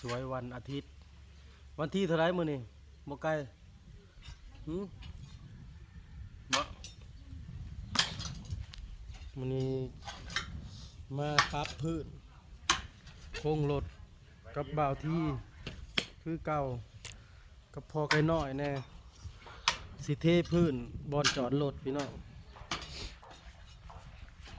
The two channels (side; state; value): both; identical; correlation 1.00